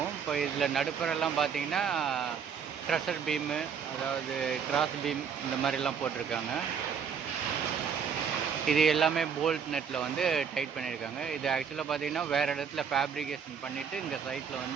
இப்போ இதில் நடுப்புறெல்லாம் பார்த்திங்கன்னா ட்ரெஷர் பீமு, அதாவது கிராஸ் பீம் இந்த மாதிரிலாம் போட்டிருக்காங்க. இது எல்லாமே போல்ட் நெட்டில் வந்து டைட் பண்ணியிருக்காங்க. இது ஆக்சுவலாக பார்த்திங்கன்னா வேறு இடத்துல ஃபேப்ரிகேஷன் பண்ணிவிட்டு இங்கே சைட்டில்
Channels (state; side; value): quieter; left; 6.8 dB